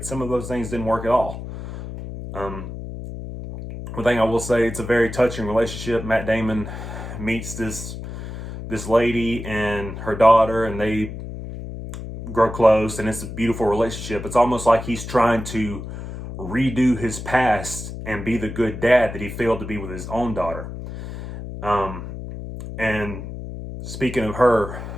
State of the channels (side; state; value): left; noise; hum, 9 dB below the sound